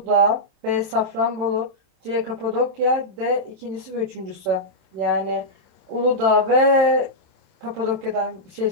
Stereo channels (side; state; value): left; late; 26 ms